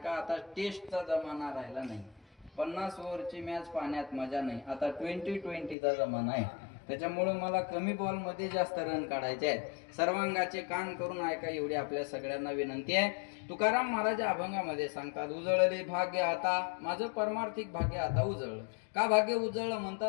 आता टेस्टचा जमाना राहिला नाही, 50 ओव्हरची मॅच पाहण्यात मजा नाही, आता 20-20चा जमाना आहे। त्याच्यामुळे मला कमी बॉल मध्ये जास्त रन काढायचे आहेत। सर्वांगाचे कान करून ऐका, एवढी आपल्या सगळ्यांना विनंती आहे। तुकाराम महाराज अभंगामध्ये सांगतात, उजळले भाग्य आता, माझं परमार्थिक भाग्य आता उजळलं। का भाग्य उजळलं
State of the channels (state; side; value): drops out; right; at 5.8 s